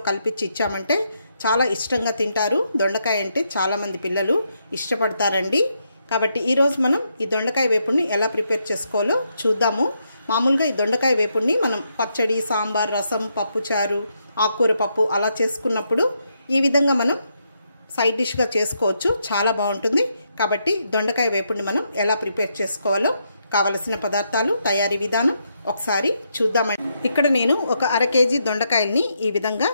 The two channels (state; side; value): inverted; both; correlation -0.79